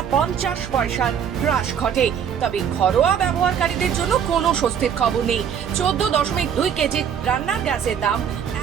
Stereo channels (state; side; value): quieter; left; 8.1 dB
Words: 50 পয়সার হ্রাস ঘটে। তবে ঘরোয়া ব্যবহারকারীদের জন্য কোনো স্বস্তির খবর নেই। 14.2 কেজি রান্নার গ্যাসের দাম